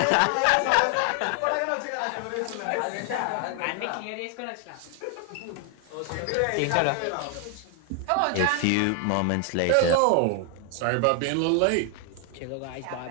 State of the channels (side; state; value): both; different; correlation 0.00